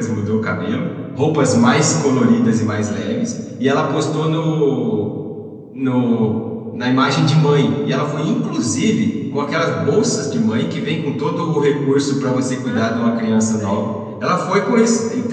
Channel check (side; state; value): both; identical; correlation 1.00